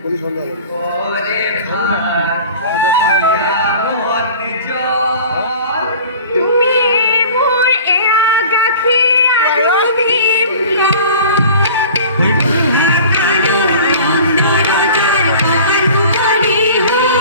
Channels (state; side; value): inverted; both; correlation -0.42